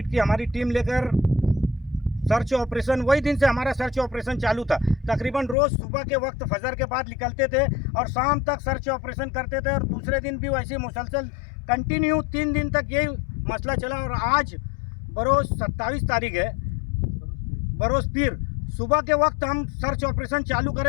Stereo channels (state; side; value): drops out; right; at 5.6 s